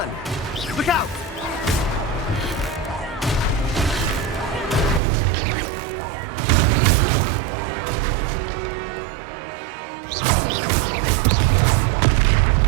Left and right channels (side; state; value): left; drops out; at 5.0 s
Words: Look out. That's right, you